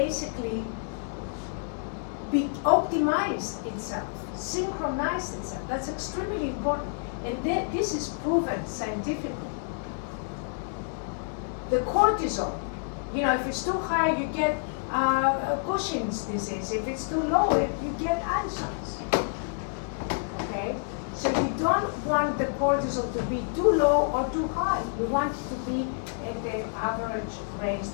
optimized itself, synchronized itself. That's extremely important. And this is proven scientifically. The cortisol, you know, if it's too high, you get Cushing's disease. If it's too low, you get Addison's. Okay? So you don't want the cortisol to be too low or too high. You want it to be at the average range,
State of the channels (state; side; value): silent; right; 59 dB below the other